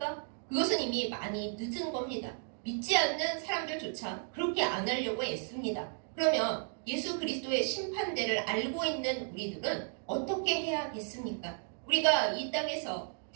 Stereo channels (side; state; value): left; silent; 55 dB below the other